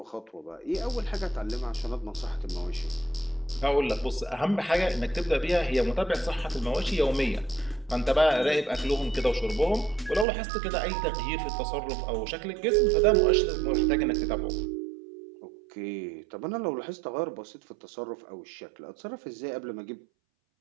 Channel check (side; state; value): left; drops out; at 10.2 s